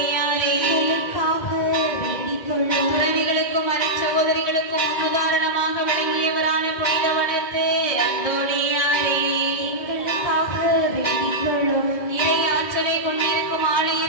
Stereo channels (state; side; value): late; right; 2.0 ms